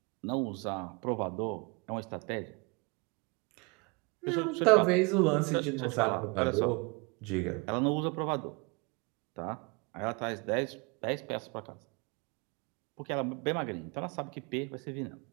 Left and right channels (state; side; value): quieter; left; 29.5 dB